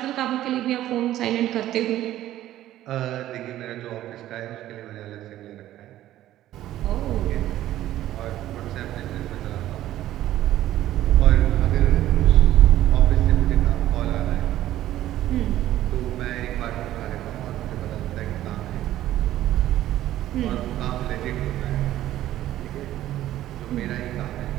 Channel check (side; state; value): left; quieter; 13.6 dB